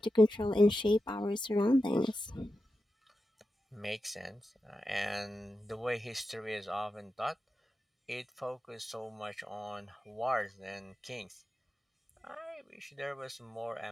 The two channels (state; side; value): normal; both; correlation 0.90